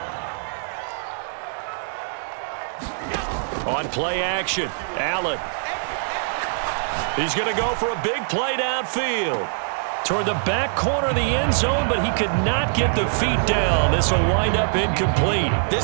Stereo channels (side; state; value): left; silent; digital silence